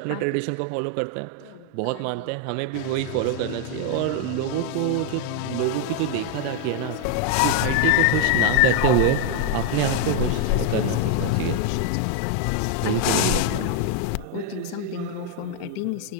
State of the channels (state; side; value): different; both; correlation 0.00